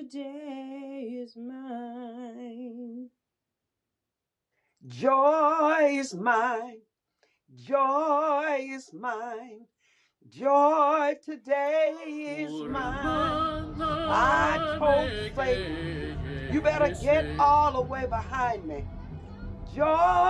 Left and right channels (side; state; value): both; identical; correlation 1.00